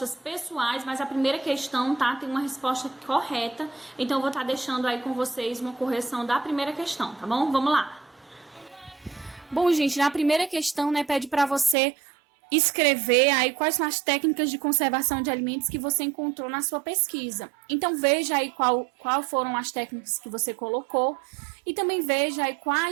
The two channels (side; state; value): left; drops out; at 11.8 s